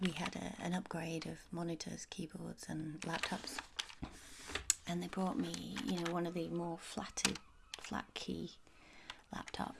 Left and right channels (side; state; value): both; identical; correlation 1.00